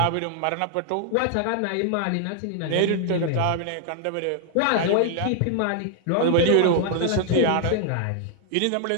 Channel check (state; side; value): different; both; correlation 0.00